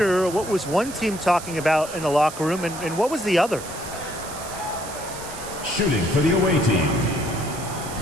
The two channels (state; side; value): noise; right; hiss, 12 dB below the sound